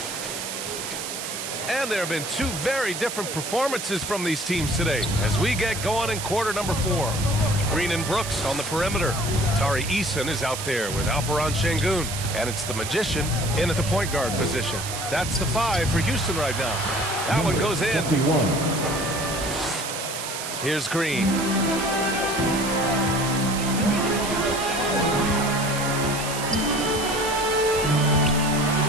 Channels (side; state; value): right; noise; hiss, 6 dB below the sound